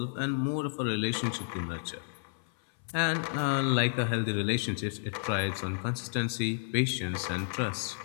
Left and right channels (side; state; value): right; silent; 57 dB below the other